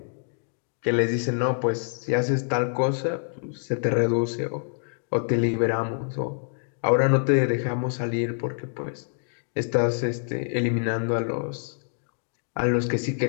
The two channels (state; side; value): silent; right; digital silence